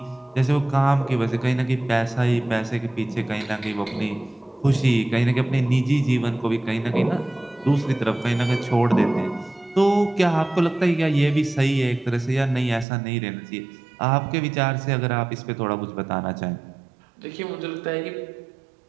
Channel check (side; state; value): left; drops out; at 12.9 s